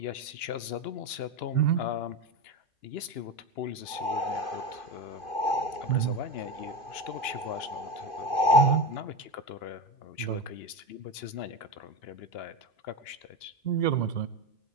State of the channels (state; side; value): late; right; 2.9 ms